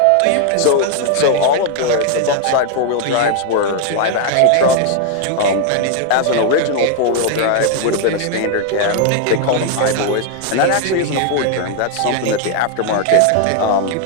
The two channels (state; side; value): different; both; correlation 0.00